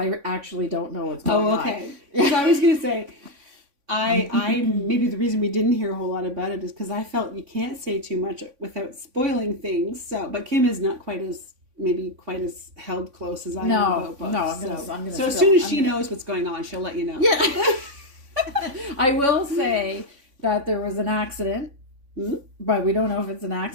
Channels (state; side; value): late; left; 3.5 ms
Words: actually don't know what's going on. Okay. Because I was going to say, I maybe the reason we didn't hear a whole lot about it is because I felt you can't say too much without spoiling things. So, but Kim is not quite as held close as I am about books. No, I'm gonna so as soon as she knows what's going on, she'll let you know. Yeah. I will say that there was an accident, but we don't know if it's an